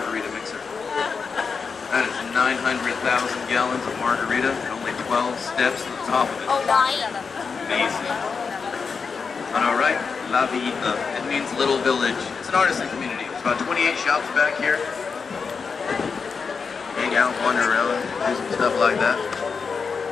mixer. That is 900,000 gallons of margarita and only 12 steps to the top of it. Amazing. On our right, La Villita. It means little village. It's an artisan community. There's about 28 shops back here. Hang out, wander around, do some stuff like that.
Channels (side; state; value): right; quieter; 5.4 dB